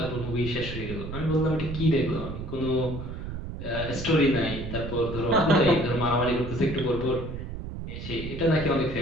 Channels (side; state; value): right; noise; rumble, 7 dB below the sound